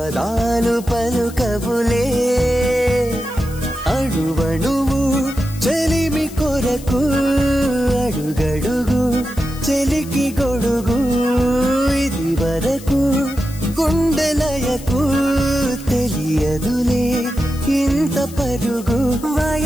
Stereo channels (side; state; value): left; noise; hiss, 18 dB below the sound